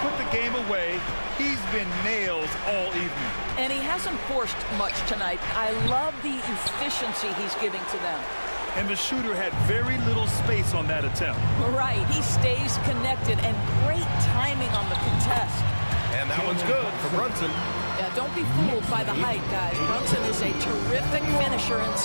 put the game away, he's been nails all evening. And he hasn't forced much tonight. I love the efficiency he's giving to them. And the shooter had very little space on that attempt. Right, he stays connected and great timing on the contest. And that one's good for Brunson. Yeah, don't be fooled by the height, guys. Brunson is a terrific finisher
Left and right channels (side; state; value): both; inverted; correlation -1.00